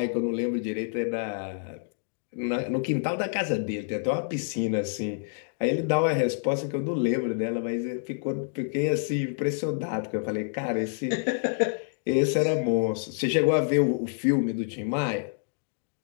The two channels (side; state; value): right; silent; digital silence